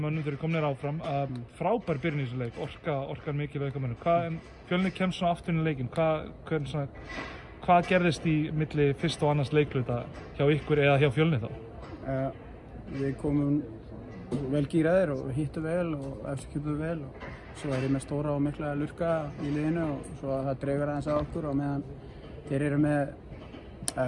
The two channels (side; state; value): both; identical; correlation 1.00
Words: mönnum þegar komnir áfram. Frábær byrjun í þessu leik, orkar mikið við mönnum. Fjölnir kemst svona aftur inn í leikinn. Hvað gerðist í milli fyrst og annars leikluta hjá ykkur eða hjá Fjölnir þá? Við komum vel gíraðir og hittum vel og eftirkjöpum vel og svo er ég með stóra og mikla lurka í liðinu og svo það dregur aðeins að okkur og meðan þeir eru með